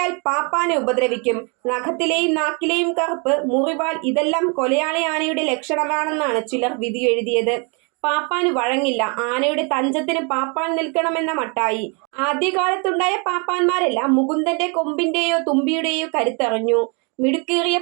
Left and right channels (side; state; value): left; quieter; 34.0 dB